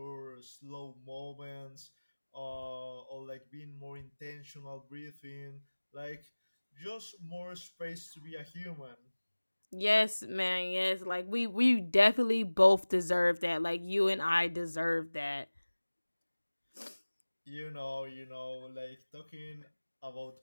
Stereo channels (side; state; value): both; inverted; correlation -1.00